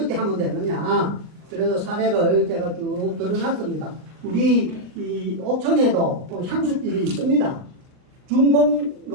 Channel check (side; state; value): left; late; 39 ms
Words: 하면 되느냐. 그래서 사례를 제가 쭉 드러났습니다. 우리 이 옥천에도 향수길이 있습니다.